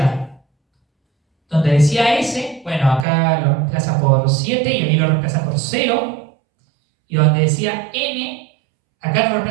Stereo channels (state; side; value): drops out; left; at 3.1 s